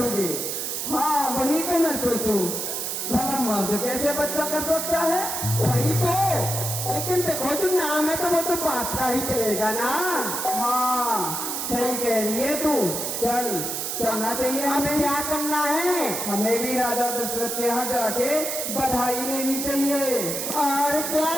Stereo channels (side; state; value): right; noise; hiss, 3 dB below the sound